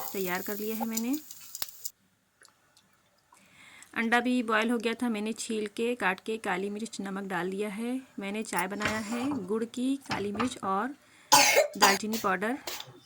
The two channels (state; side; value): identical; both; correlation 1.00